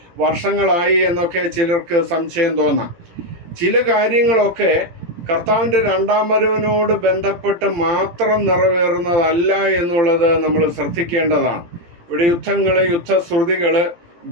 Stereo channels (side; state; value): left; late; 17 ms